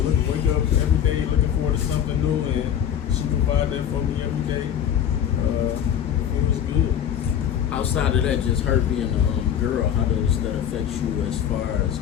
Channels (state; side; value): quieter; right; 9.3 dB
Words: up every day looking forward to something new, and she provide that for me every day. It was good. Outside of that, just her being a girl, how does that affect you as far as